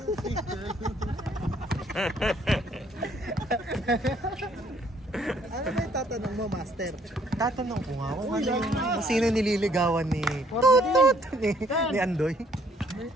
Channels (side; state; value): both; normal; correlation 0.64